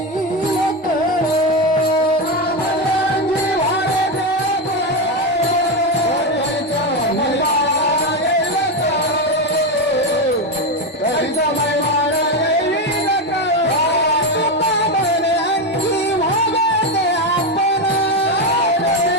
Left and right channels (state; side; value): normal; both; correlation 0.11